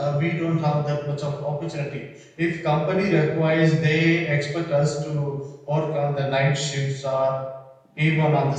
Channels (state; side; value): identical; both; correlation 1.00